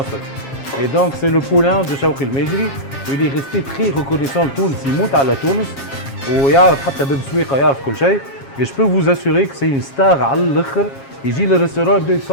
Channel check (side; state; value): right; late; 7.3 ms